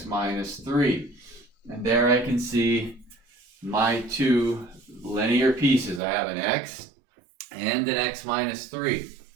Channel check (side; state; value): left; drops out; at 6.0 s